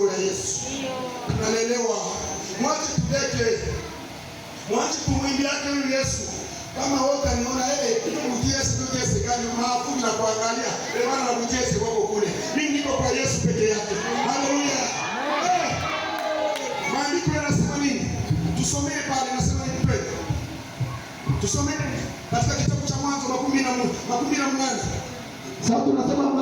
la Yesu. Tunalelewa. Mwache tudeke. Mwache kumwimbia yake Yesu. Kama wote aniona Yesu gani maafu na kuangalia. Bwana mjesi wako kule. Mimi niko kwa Yesu peke yake. Haleluya. Maandiko yanasema nini? Tusomee pale, nasema nini pale? Tusomee katika kitabu cha Mwanzo 18. Sasa tunasema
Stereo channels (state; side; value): identical; both; correlation 1.00